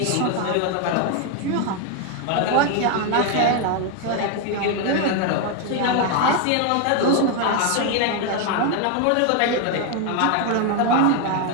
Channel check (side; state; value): both; different; correlation 0.01